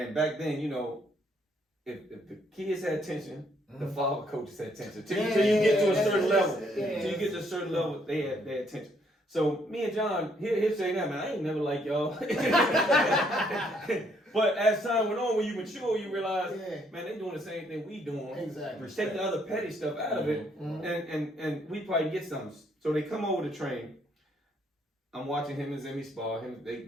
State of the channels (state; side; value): normal; both; correlation 0.69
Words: back then, if the kids had tension, the father coaches had tension. Till you get to a certain level. Till you get to a certain level, they had tension. So me and John, he'll say that, man, I ain't never like y'all. But as time went on, when you mature, you realize, man, they doing the same thing we doing. Exactly. Take the other petty stuff out of it, and we probably get something. So they come over to train. I'm watching him and Zimmy spar.